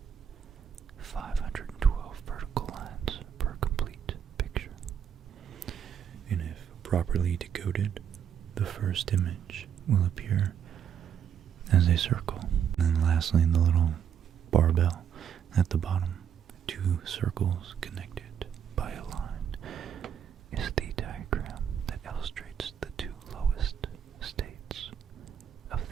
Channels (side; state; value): left; quieter; 8.5 dB